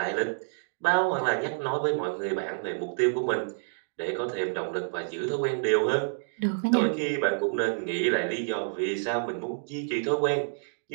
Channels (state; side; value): silent; left; digital silence